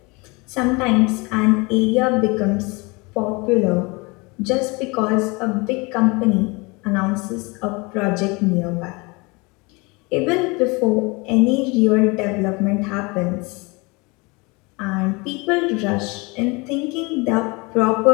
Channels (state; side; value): quieter; right; 26.9 dB